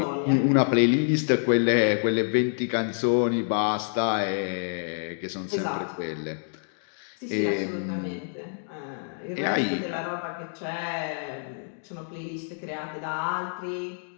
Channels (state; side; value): silent; right; digital silence